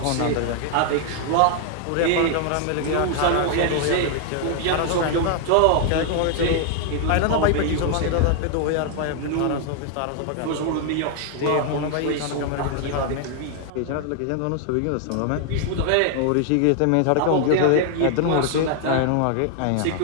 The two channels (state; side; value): different; both; correlation 0.00